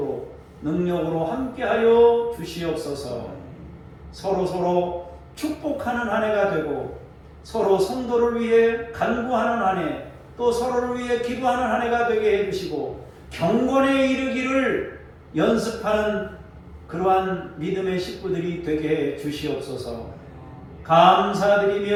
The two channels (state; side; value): identical; both; correlation 1.00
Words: 능력으로 함께하여 주시옵소서. 서로 축복하는 한 해가 되고 서로 성도를 위해 간구하는 한 해, 또 서로를 위해 기도하는 한 해가 되게 해주시고 경건에 이르기를 연습하는 그러한 믿음의 식구들이 되게 해 주시옵소서.